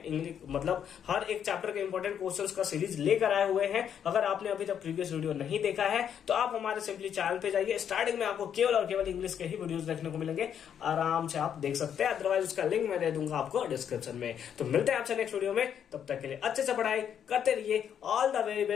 इंग्लिश मतलब हर एक चैप्टर के इंपॉर्टेंट क्वेश्चंस का सीरीज लेकर आए हुए हैं। अगर आपने अभी तक प्रीवियस वीडियो नहीं देखा है तो आप हमारे सिंपली चैनल पे जाइए, स्टार्टिंग में आपको केवल और केवल इंग्लिश के ही वीडियोस देखने को मिलेंगे, आराम से आप देख सकते हैं, अदरवाइज उसका लिंक मैं दे दूंगा आपको डिस्क्रिप्शन में। तो मिलते हैं आपसे नेक्स्ट वीडियो में, तब तक के लिए अच्छे से पढ़ाई करते रहिए। All the very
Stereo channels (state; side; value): quieter; right; 8.7 dB